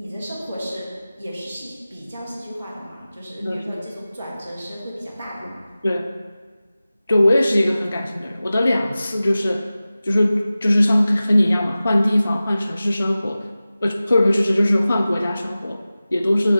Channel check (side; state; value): both; inverted; correlation -0.97